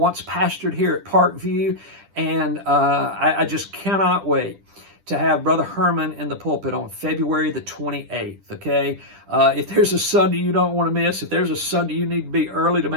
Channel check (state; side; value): late; left; 10 ms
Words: pastored here at Parkview, and I just cannot wait to have Brother Herman in the pulpit on February the 28th, okay? If there's a Sunday you don't want to miss, if there's a Sunday you need to be early to